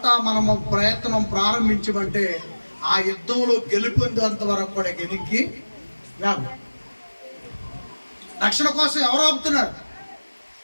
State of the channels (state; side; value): inverted; both; correlation -1.00